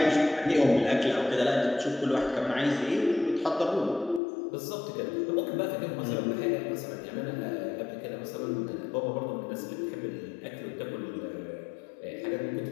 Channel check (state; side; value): drops out; right; at 4.2 s